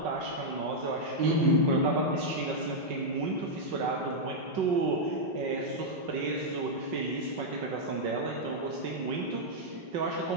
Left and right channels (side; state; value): left; late; 5.5 ms